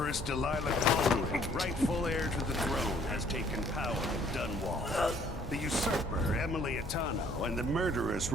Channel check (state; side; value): normal; both; correlation 0.60